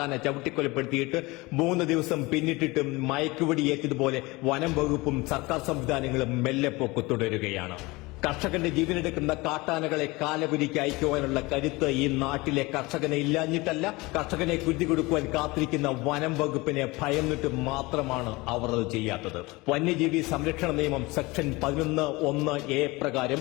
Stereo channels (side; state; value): right; quieter; 23.0 dB